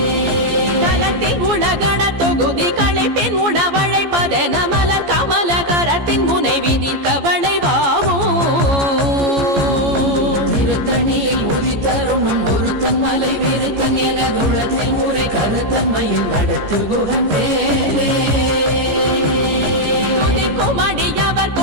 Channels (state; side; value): late; left; 14 ms